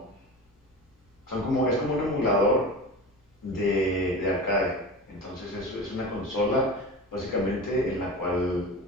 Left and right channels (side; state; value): both; normal; correlation 0.31